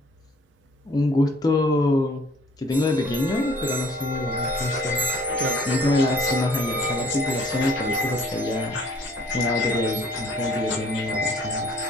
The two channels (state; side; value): normal; both; correlation 0.57